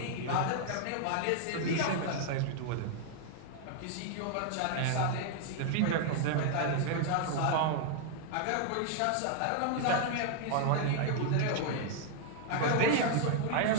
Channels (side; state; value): both; different; correlation 0.00